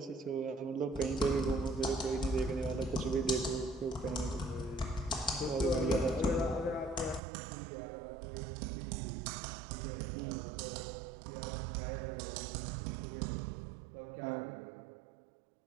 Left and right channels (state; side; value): drops out; left; at 7.2 s